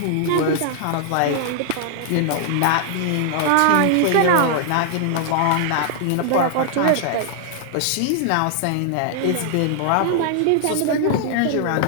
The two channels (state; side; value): different; both; correlation -0.01